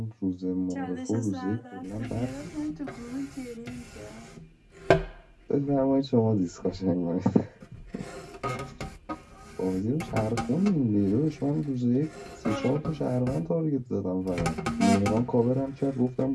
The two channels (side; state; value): both; identical; correlation 1.00